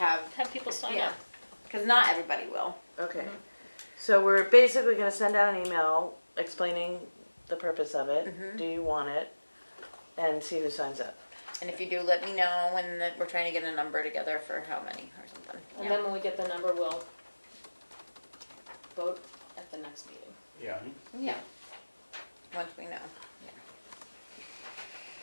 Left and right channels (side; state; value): both; inverted; correlation -1.00